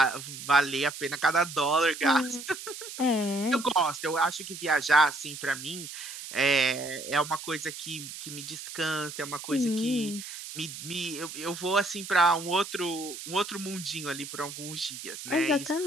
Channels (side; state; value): right; noise; hiss, 10 dB below the sound